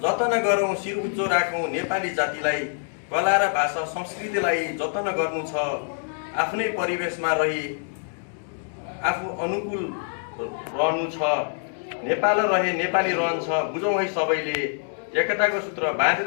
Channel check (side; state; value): right; silent; digital silence